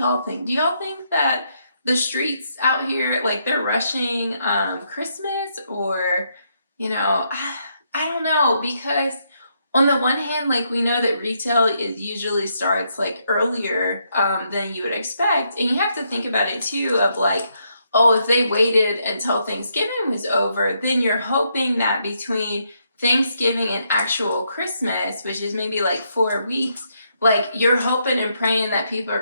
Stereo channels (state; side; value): inverted; both; correlation -0.77